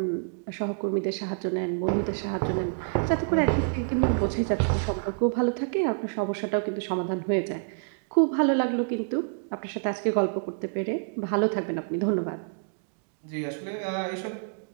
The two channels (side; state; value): left; silent; digital silence